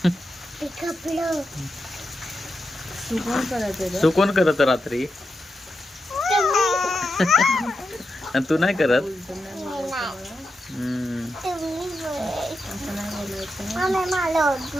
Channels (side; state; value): both; normal; correlation 0.87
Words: तू कोण करत रात्री? आणि तू नाही करत?